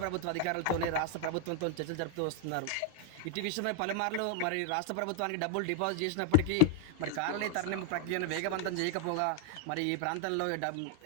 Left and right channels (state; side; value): different; both; correlation 0.00